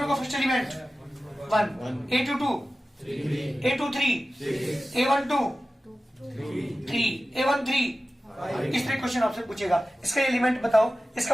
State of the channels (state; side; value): normal; both; correlation 0.94